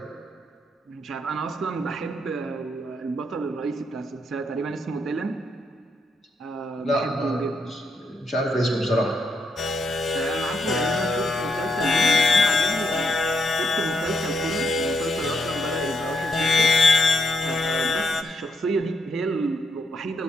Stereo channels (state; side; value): normal; both; correlation 0.78